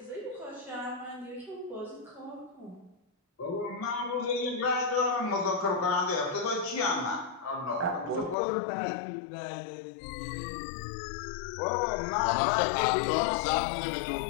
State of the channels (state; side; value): drops out; right; at 8.3 s